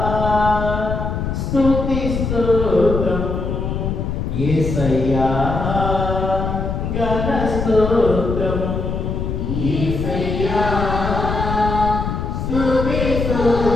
స్తుతి స్తోత్రం యేసయ్యా ఘన స్తోత్రం యేసయ్యా స్తుతి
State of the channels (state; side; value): noise; left; rumble, 3 dB below the sound